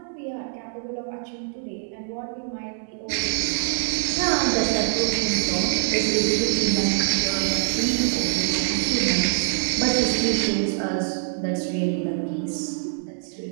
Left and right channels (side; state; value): left; silent; digital silence